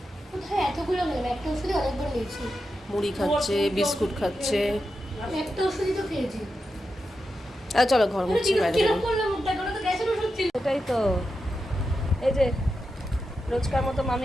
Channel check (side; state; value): both; normal; correlation 0.88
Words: কোথায় এতগুলো গেল? একটা ওষুধই অনেকবার নিয়েছি। মুড়ি খাচ্ছে, বিস্কুট খাচ্ছে। আমি একটা ওষুধই তো খেয়েছি। চলো ঘর মুছছি, বাইরে কিরকম করলাম মুখটা, কোনো তো গ্যাসের ওষুধ ছিল। এটাই তো, এই যে রোজকার মতো